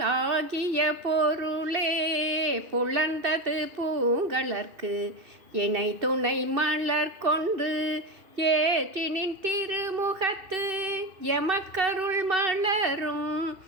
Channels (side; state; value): left; late; 2.7 ms